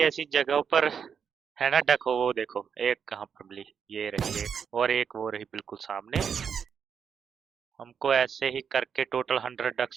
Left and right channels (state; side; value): quieter; left; 7.1 dB